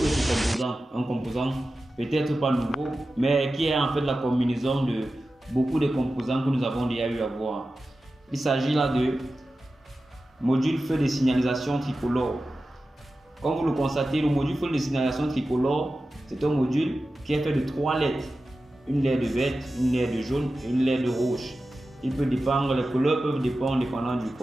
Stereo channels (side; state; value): both; normal; correlation 0.94